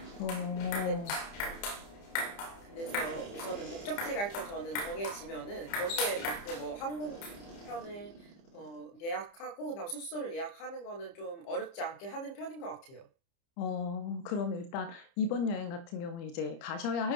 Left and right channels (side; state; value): right; late; 30 ms